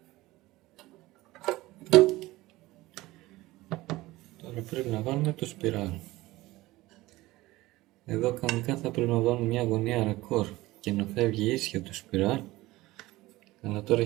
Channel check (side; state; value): left; quieter; 18.7 dB